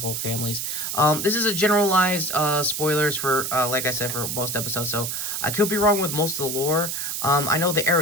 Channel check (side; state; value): right; noise; hiss, 3 dB below the sound